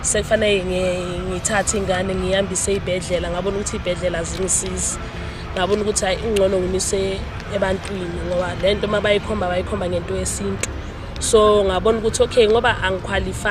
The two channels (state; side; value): identical; both; correlation 1.00